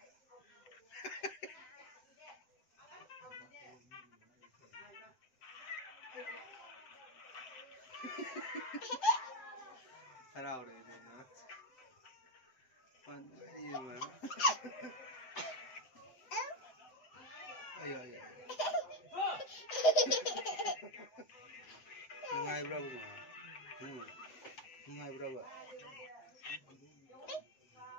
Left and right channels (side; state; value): right; late; 7.8 ms